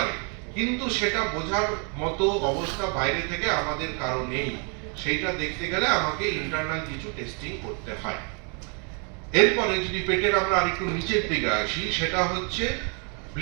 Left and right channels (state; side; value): quieter; left; 37.9 dB